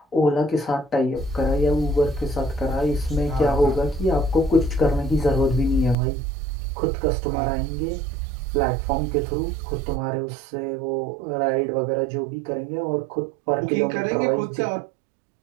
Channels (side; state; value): left; drops out; at 6.0 s